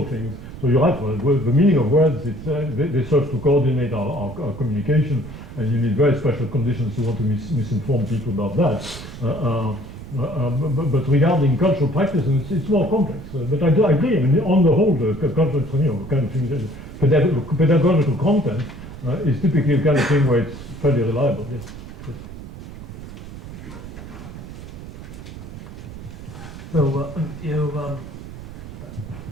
things. So you're right. Well, the meaning of words, they serve to coordinate our communication, and you need very special conditions to want to misinform people about that. But regarding cultural practices, it's more complex. But I agree. I mean, on the whole, the cultural, kind of thing, pedagogical content is typically the kind of thing where it's fairly reliable. Yes. So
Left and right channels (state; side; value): noise; right; rumble, 13 dB below the sound